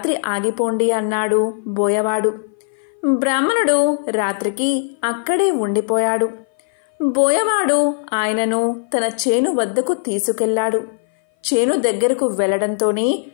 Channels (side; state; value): right; silent; 59 dB below the other